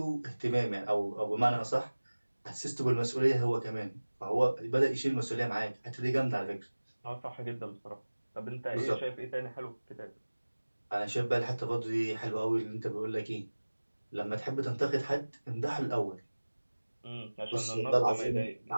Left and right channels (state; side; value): inverted; both; correlation -1.00